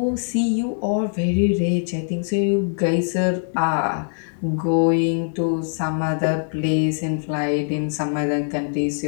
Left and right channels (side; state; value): right; silent; digital silence